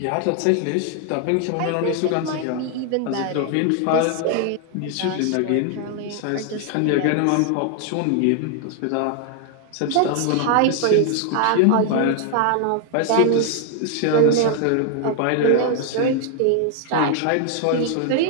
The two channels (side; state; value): both; different; correlation 0.00